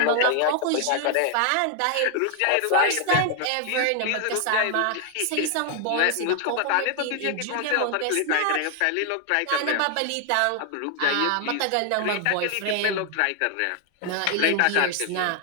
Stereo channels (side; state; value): both; different; correlation 0.00